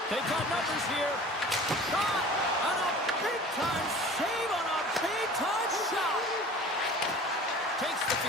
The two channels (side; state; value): both; normal; correlation 0.42